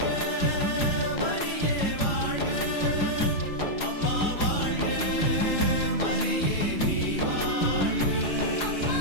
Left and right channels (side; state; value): right; late; 4.9 ms